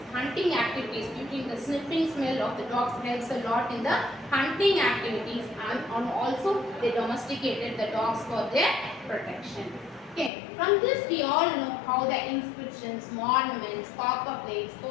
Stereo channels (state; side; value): drops out; right; at 10.3 s